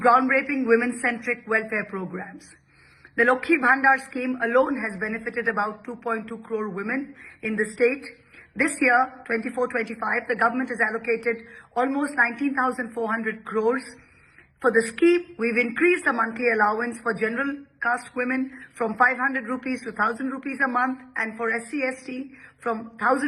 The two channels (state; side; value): identical; both; correlation 1.00